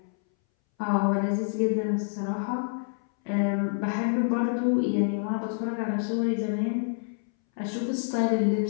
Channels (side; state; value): right; silent; 60 dB below the other